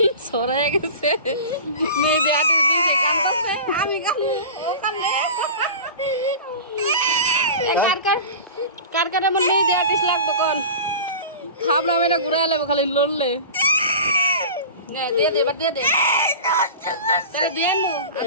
সরাই গেছে মেহেদি আর্টিস্ট দিয়েছে কান্দছে আমি কান্দে ও কান্দে কার কার আমার মেহেদি আর্টিস্ট লাগতো কোন খাবলাম এটা ঘুরে আলাম খালি লড়লে দিয়ে দে এবার দিয়ে দে তাহলে দিয়ে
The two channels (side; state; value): both; inverted; correlation -0.34